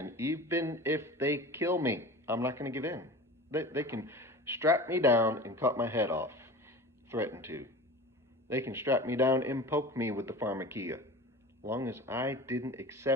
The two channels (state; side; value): normal; both; correlation 0.35